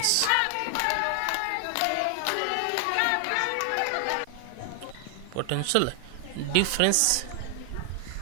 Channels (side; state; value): both; different; correlation 0.00